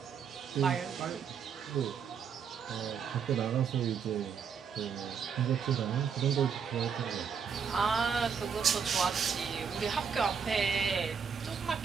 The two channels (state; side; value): quieter; left; 6.6 dB